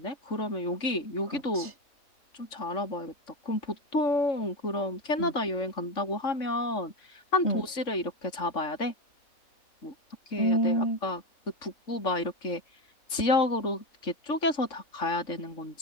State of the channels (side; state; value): right; late; 3.6 ms